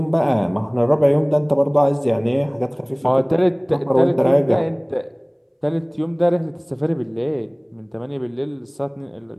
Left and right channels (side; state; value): both; identical; correlation 1.00